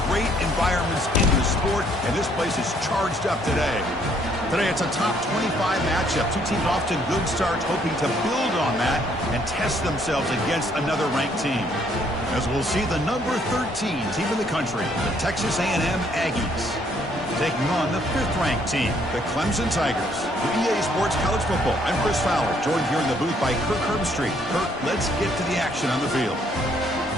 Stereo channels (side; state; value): both; normal; correlation 0.66